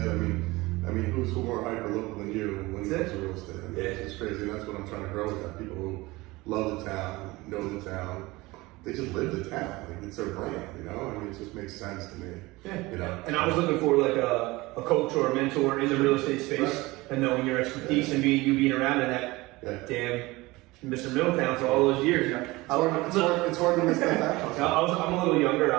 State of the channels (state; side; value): quieter; left; 21.2 dB